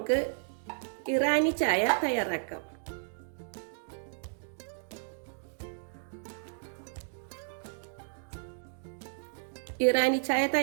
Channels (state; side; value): silent; left; digital silence